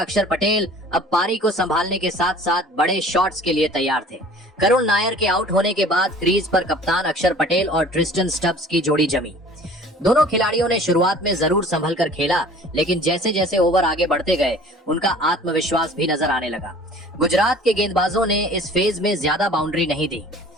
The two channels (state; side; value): normal; both; correlation 0.48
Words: पटेल अब पारी को संभालने के साथ साथ बड़े शॉट्स के लिए तैयार थे। करुण नायर के आउट होने के बाद क्रीज पर कप्तान अक्षर पटेल और ट्रिस्टन स्टब्स की जोड़ी जमी। दोनों खिलाड़ियों ने शुरुआत में जरूर संभल कर खेला, लेकिन जैसे जैसे ओवर आगे बढ़ते गए उनका आत्मविश्वास भी नजर आने लगा। गुजरात के गेंदबाजों ने इस फेज में ज्यादा बाउंड्री नहीं दी।